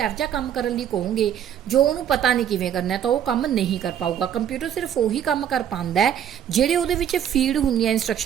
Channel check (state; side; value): quieter; left; 9.6 dB